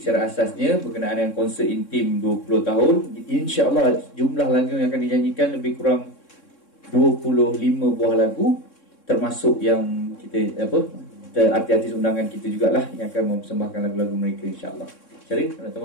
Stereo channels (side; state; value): right; late; 3.6 ms